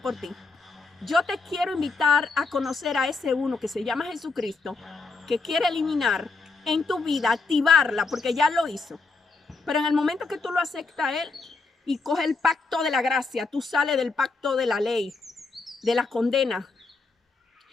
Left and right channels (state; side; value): quieter; right; 3.9 dB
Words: por ti. Yo te quiero invitar a conocer a ese uno que se llama Jesucristo, que quiere eliminar en tu vida, activarla, porque ya lo hizo. Pero en el momento que tú lo aceptas a él y coge el pacto de la gracia, tú sales del pacto de la ley, de la condena.